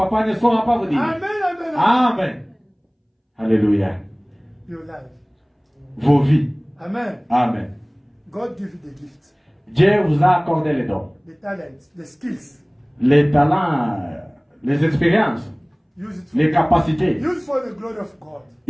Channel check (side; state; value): both; identical; correlation 1.00